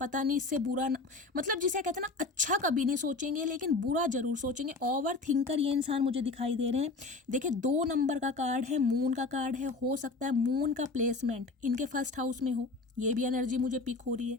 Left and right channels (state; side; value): quieter; right; 3.6 dB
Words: पता नहीं इससे बुरा न, मतलब जिसे कहते हैं ना, अच्छा कभी नहीं सोचेंगे लेकिन बुरा जरूर सोचेंगे। ओवर थिंकर ये इंसान मुझे दिखाई दे रहे हैं। देखिए 2 नंबर का कार्ड है, मून का कार्ड है, हो सकता है मून का प्लेसमेंट इनके फर्स्ट हाउस में हो, ये भी एनर्जी मुझे पिक हो रही है।